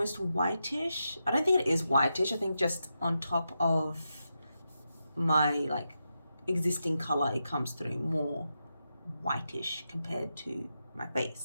whitish. I don't think it is whitish. I think just on top of my like existing color, it comes through more whitish compared to my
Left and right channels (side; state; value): both; inverted; correlation -0.87